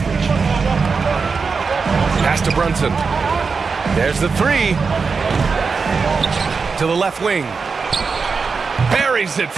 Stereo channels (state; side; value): quieter; left; 5.0 dB